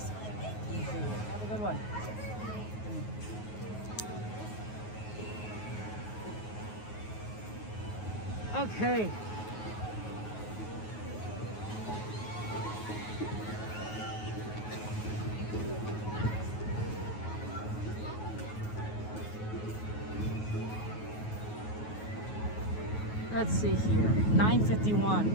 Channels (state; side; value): late; right; 9.4 ms